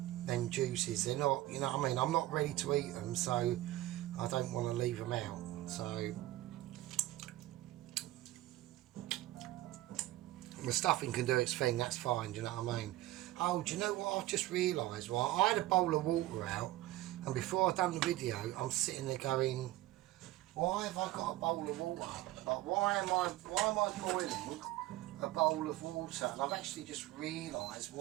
them juices. They're not, you know what I mean, I'm not ready to eat them, so I don't want to leave them out. So, the stuffing can do its thing, that's fine, do you know what I mean? Oh, do you know what I've just realised? Well, I had a bowl of water out, and before I'd done the video, I'm sitting there going, why have I got a bowl of water? Like, why am I boiling a bowl of water? And I've actually just realised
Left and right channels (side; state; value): left; quieter; 16.2 dB